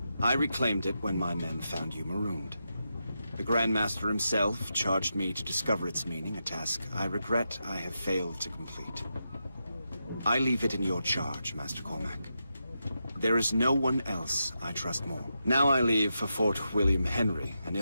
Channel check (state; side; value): inverted; both; correlation -0.86